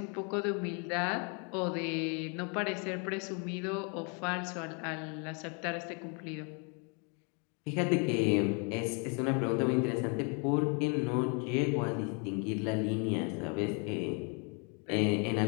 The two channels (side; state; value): right; quieter; 35.9 dB